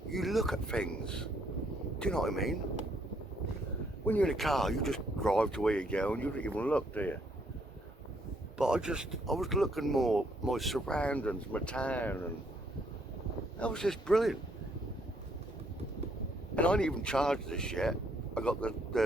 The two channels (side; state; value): both; normal; correlation 0.70